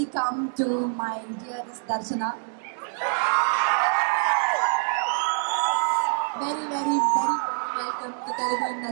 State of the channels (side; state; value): left; silent; digital silence